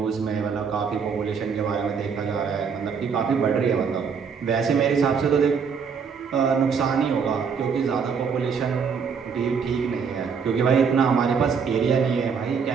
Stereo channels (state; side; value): quieter; left; 6.1 dB